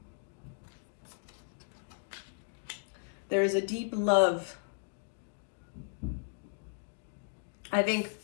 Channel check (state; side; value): silent; right; digital silence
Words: There is a deep love. I think,